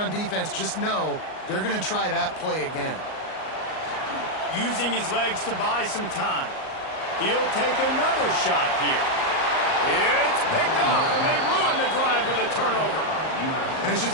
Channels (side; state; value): right; late; 38 ms